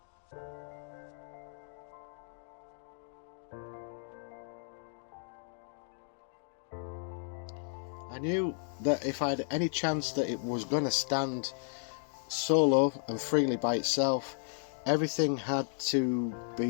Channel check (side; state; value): right; silent; digital silence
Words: I knew that if I had any chance that it was going to stand solo and freely by itself, everything had to